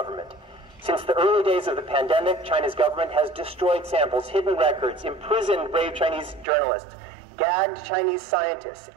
Since the early days of the pandemic, China's government has destroyed samples, hidden records, imprisoned brave Chinese journalists, gagged Chinese scientists,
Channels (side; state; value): left; drops out; at 6.5 s